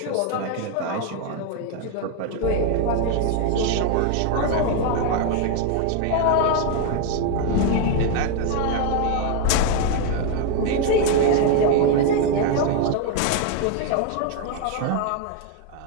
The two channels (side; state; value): both; different; correlation 0.01